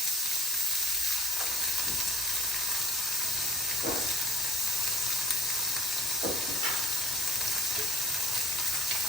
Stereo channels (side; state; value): both; normal; correlation 0.53